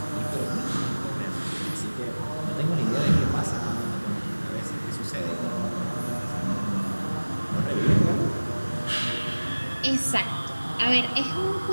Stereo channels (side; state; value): both; inverted; correlation -1.00